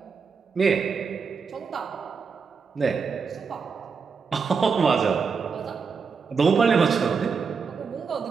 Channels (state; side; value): quieter; left; 5.5 dB